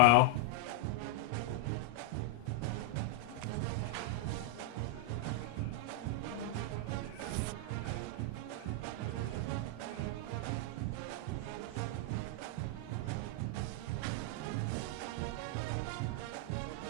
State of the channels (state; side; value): different; both; correlation 0.00